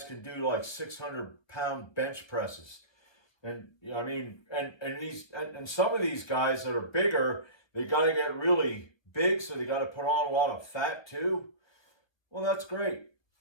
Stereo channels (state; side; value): late; right; 1.2 ms